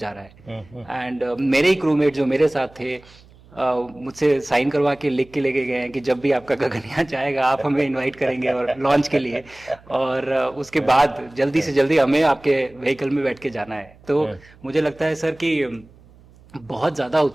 रहा है। एंड मेरे ही क्रूमेट जो मेरे साथ थे मुझसे साइन करवा के लिख के लेके गए हैं कि जब भी आपका गगनयान जाएगा आप हमें इनवाइट करेंगे और लॉन्च के लिए, और उसके बाद जल्दी से जल्दी हमें आपके व्हीकल में बैठ के जाना है। तो मुझे लगता है सर कि बहुत ज़्यादा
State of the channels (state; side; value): noise; right; hum, 26 dB below the sound